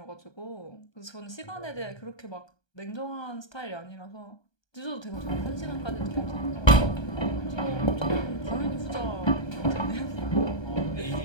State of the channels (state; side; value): late; right; 1.2 ms